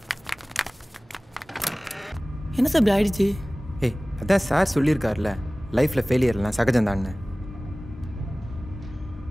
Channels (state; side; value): normal; both; correlation 0.98